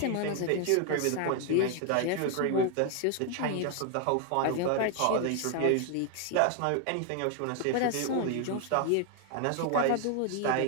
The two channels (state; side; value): different; both; correlation 0.00